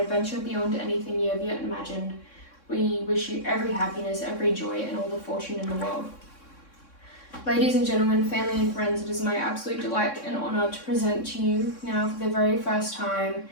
beyond anything you have yet imagined. We wish you every happiness, every joy, and all the fortune in the world. Ladies and gentlemen, family and friends, it is my absolute delight and honour to present to you now for the very first time,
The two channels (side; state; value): right; late; 3.6 ms